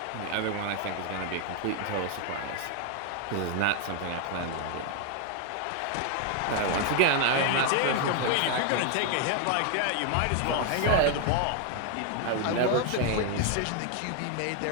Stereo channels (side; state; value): both; different; correlation 0.01